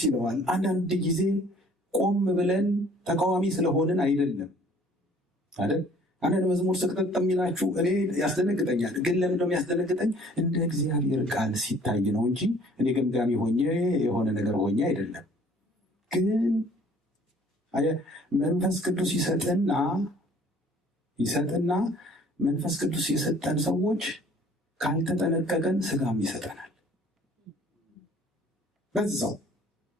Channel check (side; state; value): both; normal; correlation 0.55